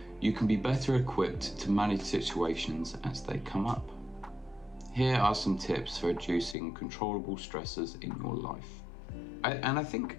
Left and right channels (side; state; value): right; drops out; at 6.6 s